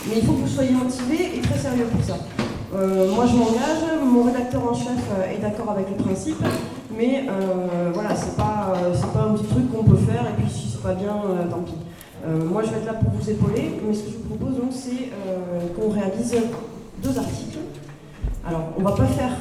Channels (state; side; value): identical; both; correlation 1.00